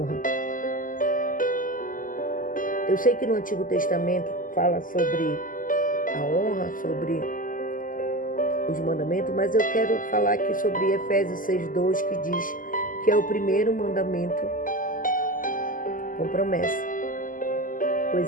Eu sei que no Antigo Testamento fala sobre a honra, sobre os mandamentos, mas eu quero falar aqui sobre Efésios 6:2, que diz que é o primeiro mandamento com promessa,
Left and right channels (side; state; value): right; late; 0.39 ms